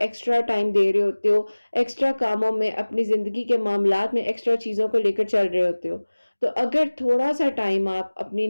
ٹائم دے رہے ہوتے ہو، ایکسٹرا کاموں میں، اپنی زندگی کے معاملات میں ایکسٹرا چیزوں کو لے کر چل رہے ہوتے ہو، تو اگر تھوڑا سا ٹائم آپ اپنی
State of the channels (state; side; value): inverted; both; correlation -1.00